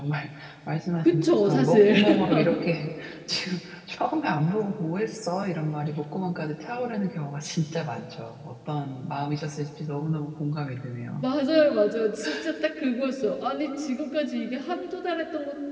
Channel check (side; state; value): both; identical; correlation 1.00